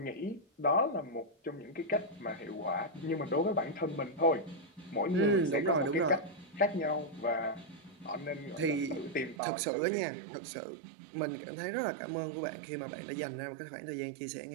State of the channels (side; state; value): left; drops out; at 9.4 s